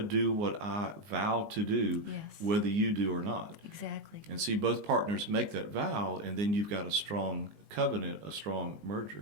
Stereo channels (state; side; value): late; left; 19 ms